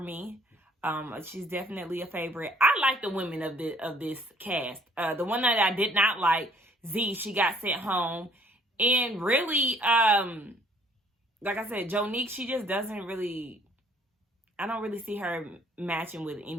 She's definitely a favorite. I like the women of this cast. The one that I did not like, Z, she got sent home. And really, like I said, Jonique, she just doesn't really, I don't really see her matching with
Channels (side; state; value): both; normal; correlation 0.60